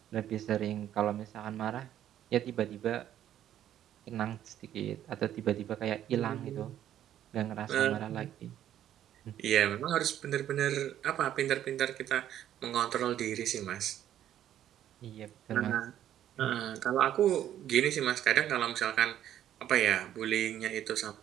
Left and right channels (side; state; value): left; quieter; 11.3 dB